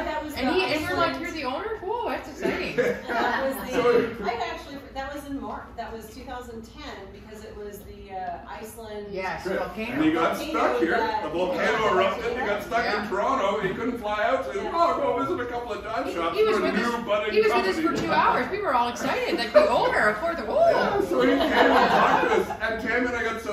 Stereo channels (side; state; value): both; identical; correlation 1.00